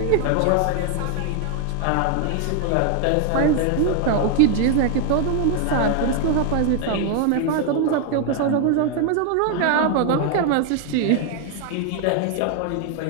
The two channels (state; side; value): different; both; correlation 0.00